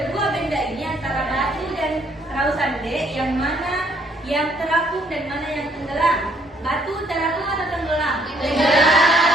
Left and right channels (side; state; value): both; normal; correlation 0.66